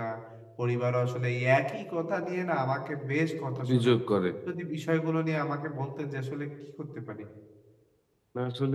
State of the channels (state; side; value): identical; both; correlation 1.00